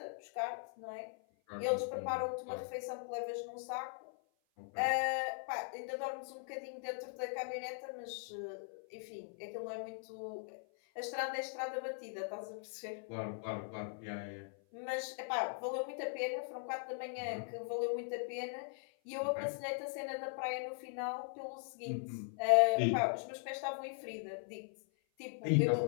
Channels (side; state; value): right; silent; 51 dB below the other